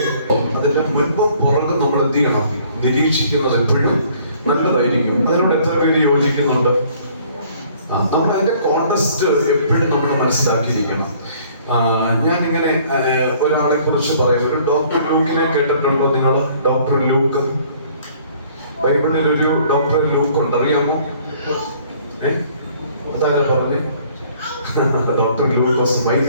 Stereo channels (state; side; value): inverted; both; correlation -0.58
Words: അതിന്റെ മുൻപും പുറകും നമ്മൾ എന്ത് ചെയ്യണം? നിരീക്ഷിക്കുന്നത് എപ്പോഴും നല്ലതായിരിക്കും. അതിനോട് എത്ര പേര് യോജിക്കുന്നുണ്ട്? നമ്മൾ അതിന്റെ കോണ്ടെക്സ്റ്റ് എപ്പോഴും നമ്മൾ മനസ്സിലാക്കിയിരിക്കണം. ഞാനിങ്ങനെ ഒരാളെ കുറിച്ച് പറയാം. ഒരു ഡോക്ടർ ലൂക്കിനെ കേട്ടിട്ടുണ്ടോ നിങ്ങൾ? ഡോക്ടർ ലൂക്ക്, ബൈബിളിൽ ഒരു ഡോക്ടർ ലൂക്ക് ഉണ്ട്, അറിയാമോ? അതാരാ പറഞ്ഞേ? ഡോക്ടർ ലൂക്കോസ്.